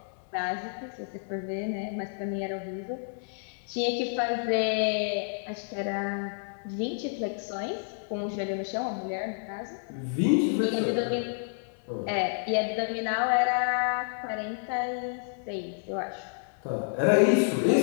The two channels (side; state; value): right; silent; 58 dB below the other